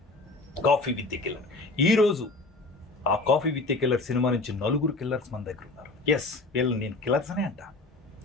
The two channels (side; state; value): right; quieter; 3.2 dB